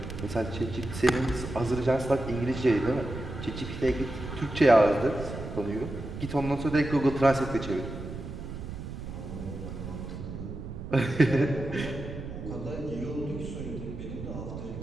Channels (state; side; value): noise; right; rumble, 9 dB below the sound